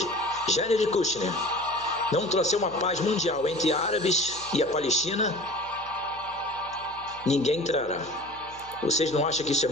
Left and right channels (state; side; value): noise; left; hum, 23 dB below the sound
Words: Jared Kushner não trouxer uma paz mundial entre árabes e a Palestina, ninguém entrará. Vocês não acham que isso é